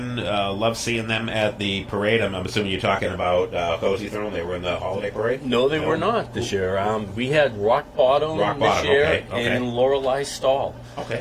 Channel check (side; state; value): both; identical; correlation 1.00